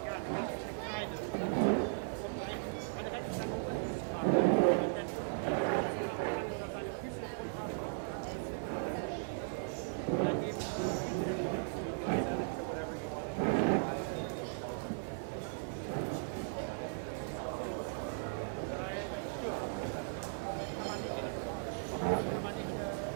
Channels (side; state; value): left; silent; digital silence